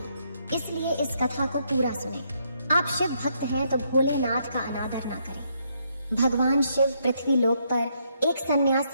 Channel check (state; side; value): inverted; both; correlation -0.74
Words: इसलिए इस कथा को पूरा सुने। आप शिव भक्त हैं तो भोलेनाथ का अनादर ना करें। भगवान शिव पृथ्वी लोक पर एक